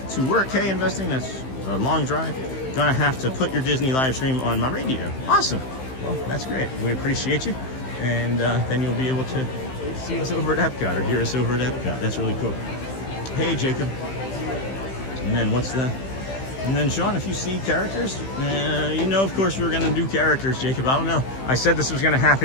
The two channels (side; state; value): right; late; 15 ms